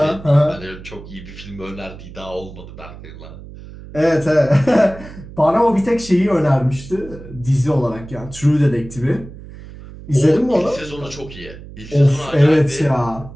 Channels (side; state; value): right; noise; hum, 16 dB below the sound